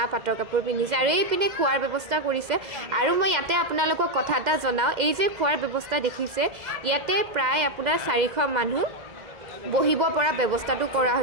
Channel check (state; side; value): late; left; 2.0 ms